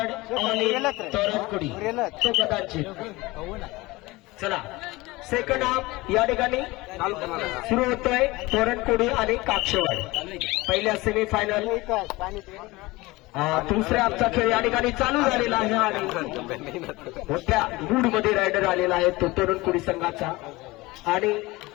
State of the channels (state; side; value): quieter; right; 21.3 dB